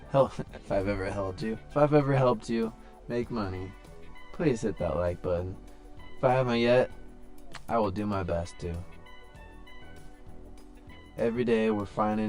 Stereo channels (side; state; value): both; identical; correlation 1.00